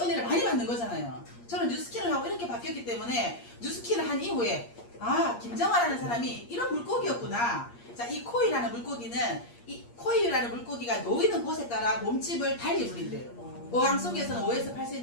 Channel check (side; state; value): right; late; 8.5 ms